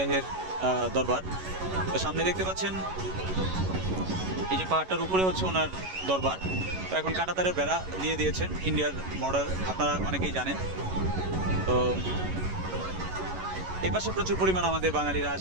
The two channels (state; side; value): late; left; 11 ms